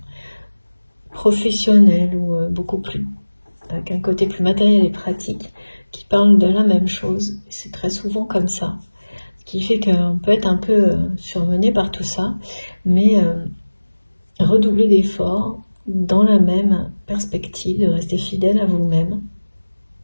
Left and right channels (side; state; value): both; inverted; correlation -1.00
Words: professionnelles ou beaucoup plus, avec un côté plus matériel et pratique, qui parlent de la même chose. C'est très souvent comme ça, ce qui fait qu'on peut être un peu surmené par tout ça, mais redoubler d'efforts dans la même perspective, de rester fidèle à vous-même,